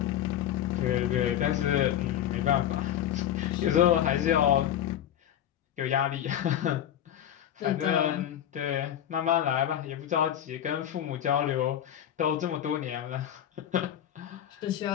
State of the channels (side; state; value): right; quieter; 10.8 dB